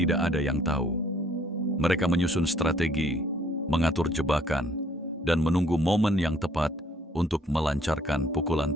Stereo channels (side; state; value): both; normal; correlation 0.61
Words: ada yang tahu. Mereka menyusun strategi, mengatur jebakan, dan menunggu momen yang tepat untuk melancarkan pukulan